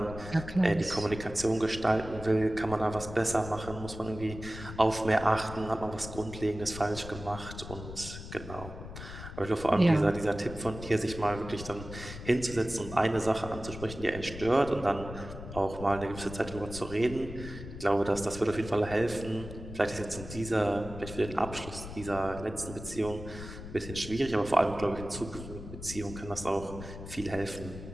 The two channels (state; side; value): noise; left; rumble, 11 dB below the sound